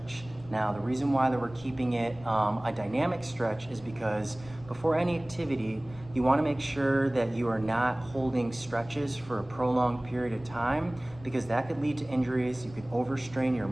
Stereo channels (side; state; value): left; noise; rumble, 20 dB below the sound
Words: Now, the reason why that we're keeping it a dynamic stretch is because before any activity, you want to make sure that you are not holding stretches for a prolonged period of time, because that could lead to injuries. You could overstrain your